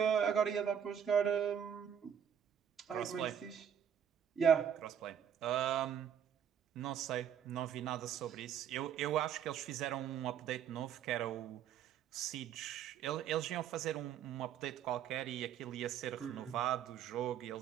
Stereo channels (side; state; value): left; quieter; 8.7 dB